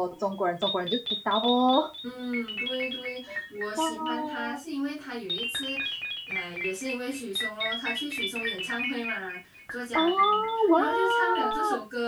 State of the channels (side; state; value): both; identical; correlation 1.00